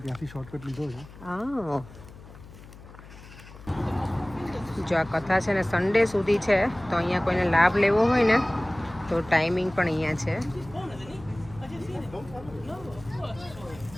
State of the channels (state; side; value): noise; left; hum, 18 dB below the sound